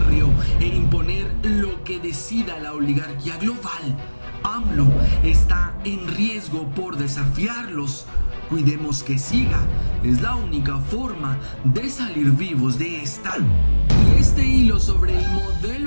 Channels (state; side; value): inverted; both; correlation -1.00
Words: e imponer lo que decida la oligarquía global. AMLO está en riesgo por desafiarlos. Cuidemos que siga. Es la única forma de salir vivos de esta. Y este hilo sobre el